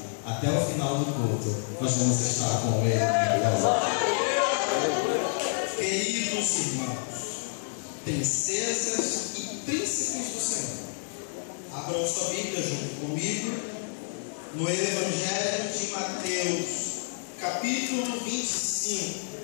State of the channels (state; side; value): silent; right; digital silence